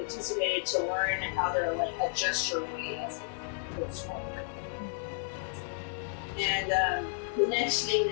anticipated to learn how to like adjust your weight as it goes forward. And the next thing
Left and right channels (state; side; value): silent; right; 56 dB below the other